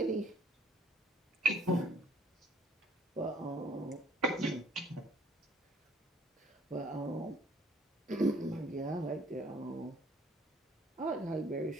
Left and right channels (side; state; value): both; normal; correlation 0.57